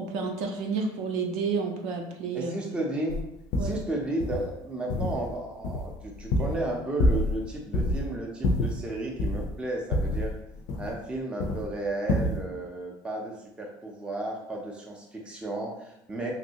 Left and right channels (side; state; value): both; normal; correlation 0.54